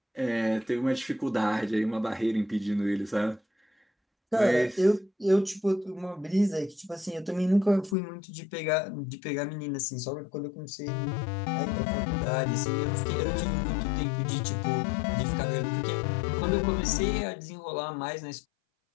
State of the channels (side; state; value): right; drops out; at 8.0 s